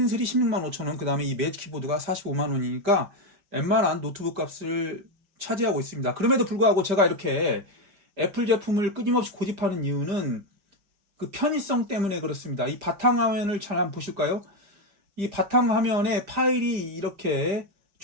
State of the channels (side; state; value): left; late; 5.1 ms